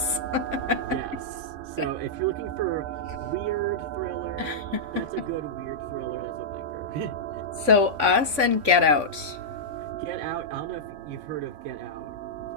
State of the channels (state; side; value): late; left; 3.5 ms